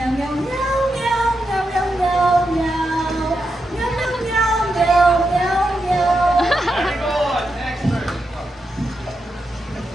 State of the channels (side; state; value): both; normal; correlation 0.86